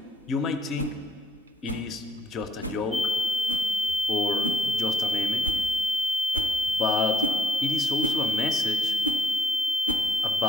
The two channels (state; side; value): normal; both; correlation 0.74